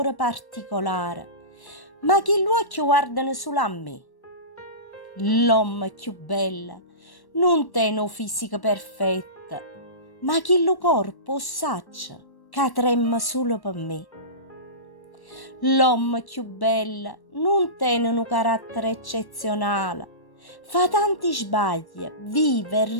particolare, ma che gli occhi guardano solo a me. L'uomo più bello non tiene un fisico perfetto, ma che il corpo saccia che trema solo per me. L'uomo più bello non tiene un carattere eccezionale, fa tanti sbagli, vive e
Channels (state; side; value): late; right; 1.1 ms